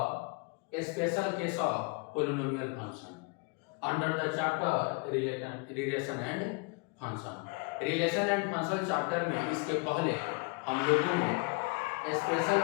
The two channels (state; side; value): quieter; right; 30.1 dB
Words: special case of polynomial function under the chapter relation and function. Relation and function chapter में इसके पहले हम लोगों ने special